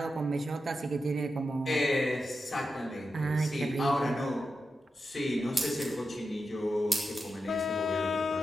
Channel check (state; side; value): normal; both; correlation 0.89